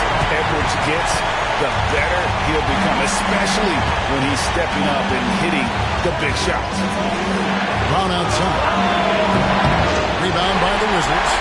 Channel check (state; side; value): identical; both; correlation 1.00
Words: Edwards gets, the better he'll become, especially when he's stepping up and hitting the big shots. Brown outside. Rebound by the Wizards.